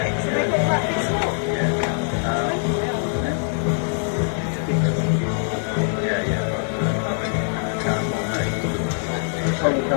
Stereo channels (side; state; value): right; silent; digital silence